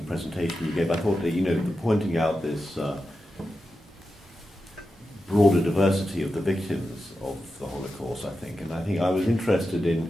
presentation you gave. I thought that, pointing out this broader diversity of the victims of the Holocaust, I think I was interested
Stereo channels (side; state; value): both; normal; correlation 0.90